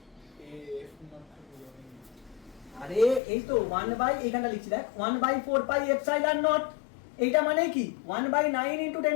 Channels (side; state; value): right; drops out; at 3.2 s